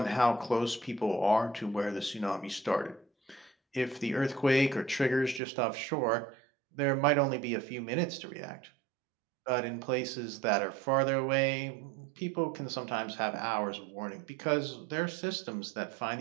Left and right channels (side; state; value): left; drops out; at 5.4 s